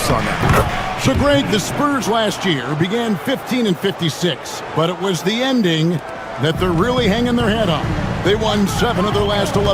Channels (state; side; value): identical; both; correlation 1.00